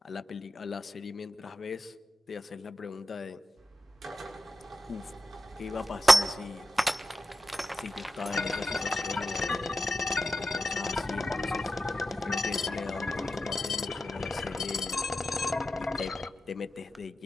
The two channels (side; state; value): both; normal; correlation 0.91